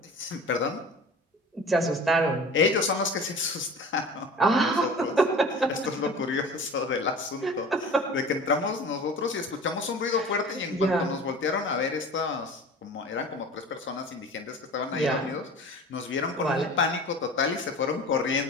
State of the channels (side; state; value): both; normal; correlation 0.39